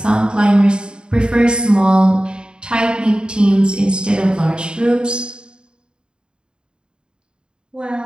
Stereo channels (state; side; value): late; left; 0.050 ms